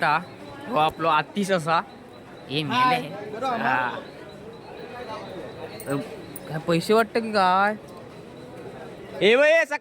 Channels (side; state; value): both; identical; correlation 1.00